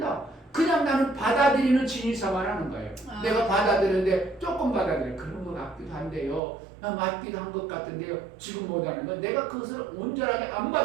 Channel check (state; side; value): drops out; left; at 6.4 s